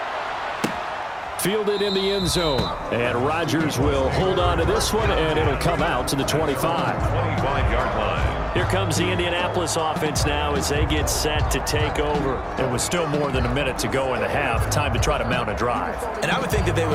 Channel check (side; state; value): both; identical; correlation 1.00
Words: Fielded in the end zone. And Rodgers will hold on to this one, and it'll come out to the 25. 25-yard line. Here comes the Indianapolis offense now as they get set to take over. It was still more than a minute to go in the half. Time to try to mount a drive. And I would think that they